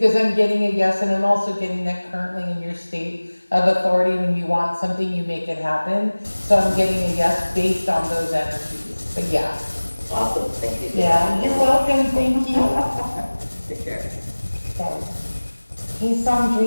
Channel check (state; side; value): inverted; both; correlation -1.00